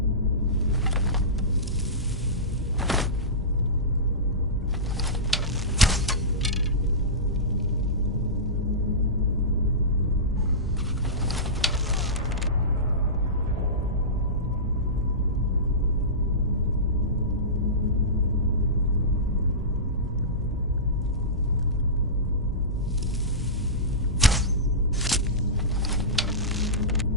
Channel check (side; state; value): both; normal; correlation -0.18